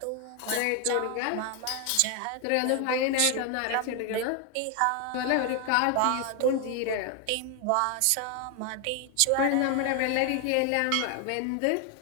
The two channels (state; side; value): different; both; correlation 0.01